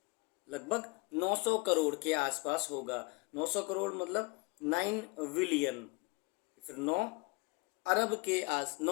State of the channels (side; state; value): right; quieter; 26.0 dB